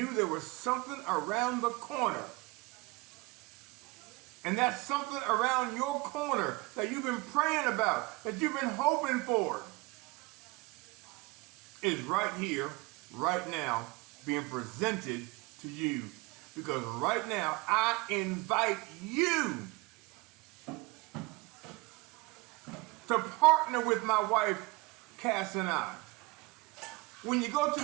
there was something around the corner. And that something around your corner that you've been praying about, that you've been hoping for, is right here, right now, being presented to you. Because right now, I invite you to partner with my wife, Cass, and I. When you go to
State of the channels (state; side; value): quieter; left; 23.9 dB